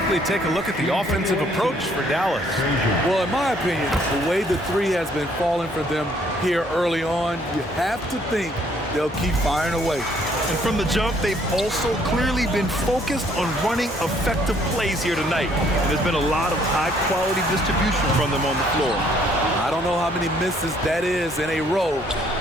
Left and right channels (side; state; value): both; normal; correlation 0.64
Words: take a look at the offensive approach for Dallas. Well, in my opinion, the way the three has been falling for them here early on, you have to think they'll keep firing away. And from the jump, they've also clearly been focused on running effective plays here tonight. And there's been a lot of high-quality distribution from them on the floor. I don't know how many misses that is in a row,